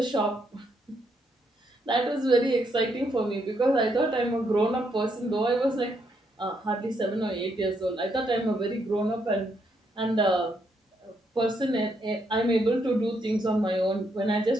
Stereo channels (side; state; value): both; normal; correlation 0.76